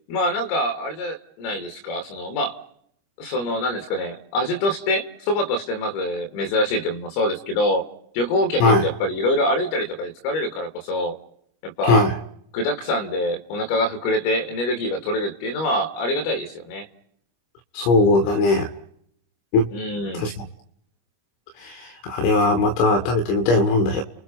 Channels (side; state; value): right; late; 25 ms